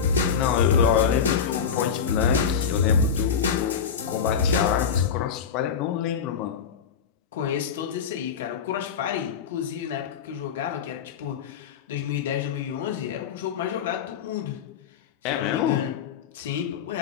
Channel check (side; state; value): right; quieter; 7.1 dB